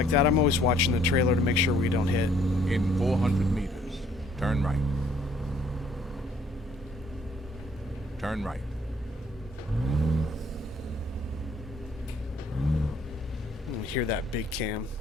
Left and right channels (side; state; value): both; normal; correlation 0.62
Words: that. I'm always watching the trailer to make sure we don't hit. In 400 meters, turn right. Turn right. You hear that big cam.